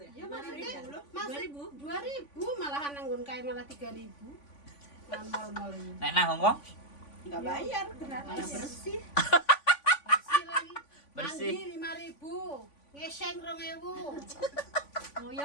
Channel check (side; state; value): right; late; 3.5 ms